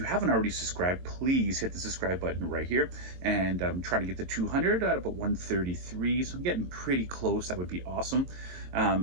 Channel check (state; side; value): late; left; 22 ms